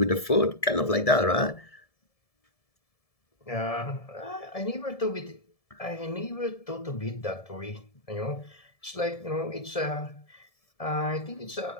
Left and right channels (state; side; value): late; right; 1.7 ms